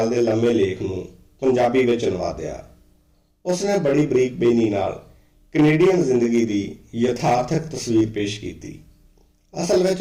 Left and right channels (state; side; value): identical; both; correlation 1.00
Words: ਦੇ ਲੰਮੇ ਲੇਖ ਨੂੰ ਪੰਜਾਬੀ ਵਿੱਚ ਅਨੁਵਾਦਿਆ। ਉਸਨੇ ਬੜੀ ਬਰੀਕ ਬੇਨੀ ਨਾਲ ਕੈਨੇਡੀਅਨ ਜ਼ਿੰਦਗੀ ਦੀ ਯਥਾਰਥਕ ਤਸਵੀਰ ਪੇਸ਼ ਕੀਤੀ। ਅਸਲ ਵਿੱਚ